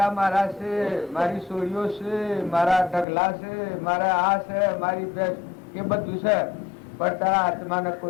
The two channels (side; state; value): right; drops out; at 3.1 s